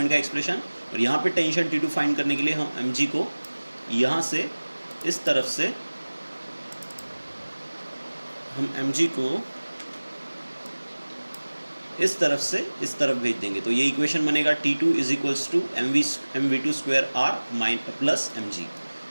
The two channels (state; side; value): inverted; both; correlation -1.00